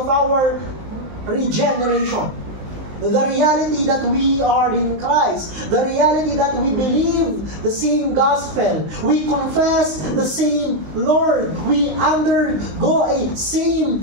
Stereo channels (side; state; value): left; late; 19 ms